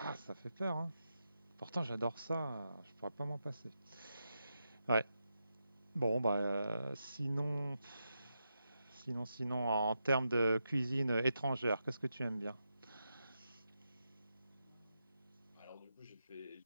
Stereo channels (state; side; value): inverted; both; correlation -0.87